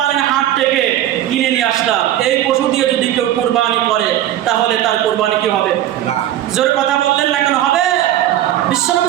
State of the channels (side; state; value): left; quieter; 12.5 dB